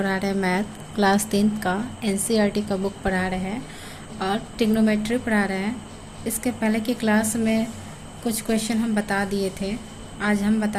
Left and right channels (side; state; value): both; identical; correlation 1.00